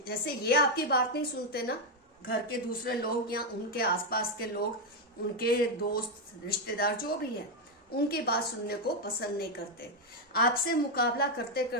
जैसे ये आपकी बात नहीं सुनते ना, घर के दूसरे लोग या उनके आसपास के लोग, उनके दोस्त, रिश्तेदार जो भी है, उनकी बात सुनने को पसंद नहीं करते। आपसे मुकाबला करते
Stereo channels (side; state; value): both; normal; correlation 0.03